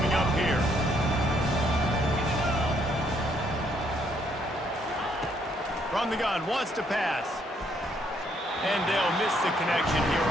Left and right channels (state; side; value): normal; both; correlation 0.70